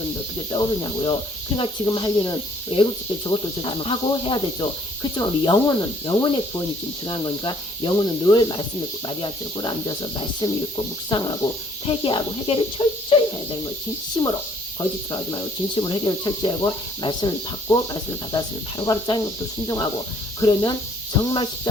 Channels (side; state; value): both; normal; correlation 0.62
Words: 어떻게 떠오르냐고요. 그러니까 지금 할 일은 애국집 때 저것도 하고 해야 되죠. 그렇지만 우리 영혼의 구원이 지금 중요한 거니까 영혼은 늘 말씀을 마리아처럼 꿇어 앉아서 말씀 읽고 묵상하고 회개하고 해결을 철저히 해야 되는 거예요. 진심으로. 거짓으로 하지 말고 진심으로 해결을 철저히 하고 말씀을 받고 말씀을 받았으면 바로바로 짜는 것도 순종하고 그러면 정말